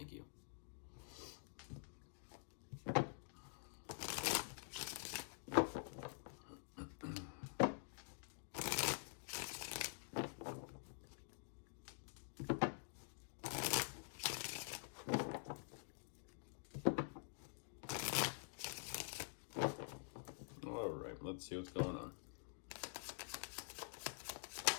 you. All right, let's see what's going on.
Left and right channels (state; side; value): silent; right; digital silence